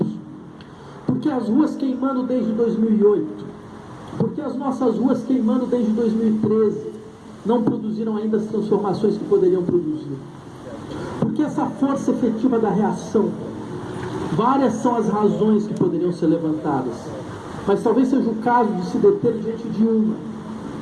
Por que as ruas queimando desde 2008? Por que as nossas ruas queimando desde 2013 não produziram ainda as transformações que poderiam produzir? Por que essa força efetiva da reação? Várias são as razões que poderiam ser levantadas, mas talvez seja o caso de se deter diante de uma,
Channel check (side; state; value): both; identical; correlation 1.00